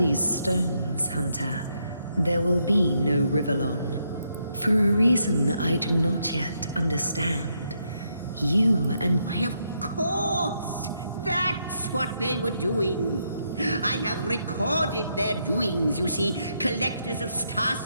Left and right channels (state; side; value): inverted; both; correlation -0.78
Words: stones, Hunter, there will be no Rivellon. For a reason I do not yet understand. You and... Why, of course! That's what they were doing. I have recorded their doings, you see. Collectors of